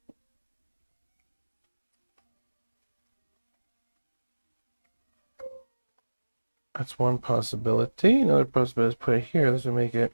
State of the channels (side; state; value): both; inverted; correlation -1.00